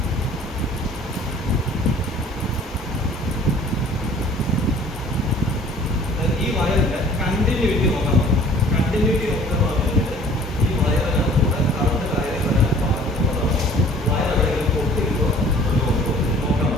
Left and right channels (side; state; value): both; normal; correlation 0.51